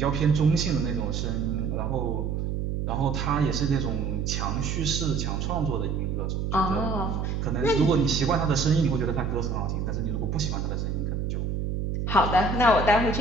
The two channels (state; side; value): noise; right; hum, 1 dB below the sound